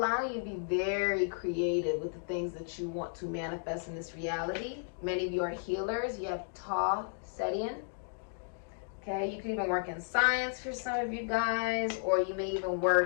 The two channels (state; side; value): silent; right; digital silence